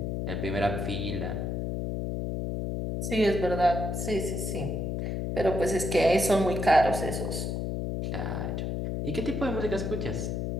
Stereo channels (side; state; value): left; noise; hum, 2 dB below the sound